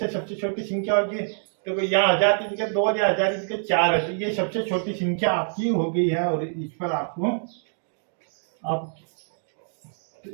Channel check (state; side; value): silent; left; digital silence